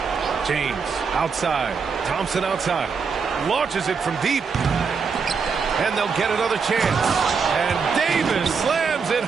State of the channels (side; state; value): left; quieter; 5.6 dB